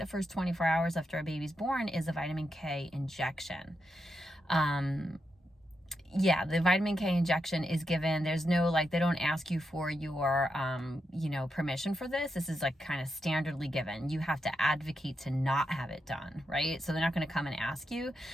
first 24 hours after a baby's born, is a vitamin K injection. The vitamin K injection is given. There's no, they don't ask you for your, permission for this. This is kind of standardly given. You have to advocate to not have it done, right? So they're not going to come and ask you.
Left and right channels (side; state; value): both; normal; correlation 0.85